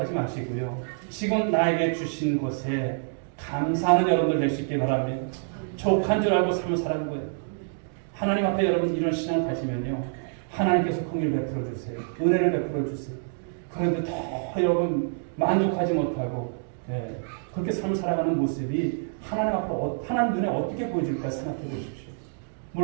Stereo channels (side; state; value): left; silent; digital silence